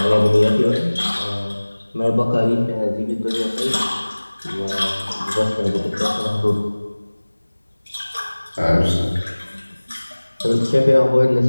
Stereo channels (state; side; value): inverted; both; correlation -1.00